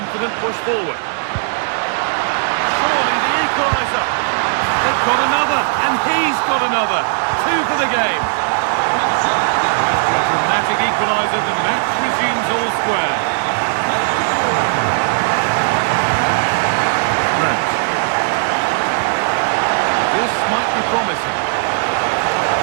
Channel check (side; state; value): left; silent; digital silence